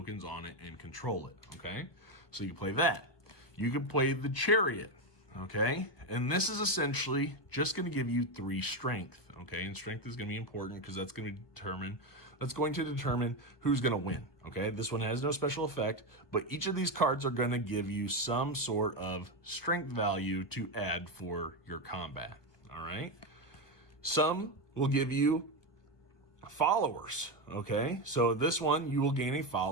on it and control it, okay? So you play that. You can play the chariot, okay? And this is essentially just going to give you 3 strength, okay? And strength is going to be important because that's going to determine who's going to win, okay? This one has no special effect, but each of these cards are going to give you some sort of strength value to add for your combat, all right? Some will give you followers, okay? So this one, you will gain a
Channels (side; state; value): right; late; 1.2 ms